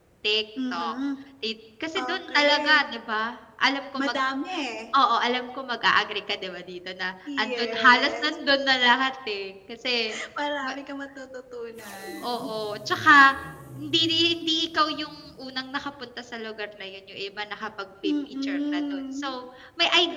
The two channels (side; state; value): both; identical; correlation 1.00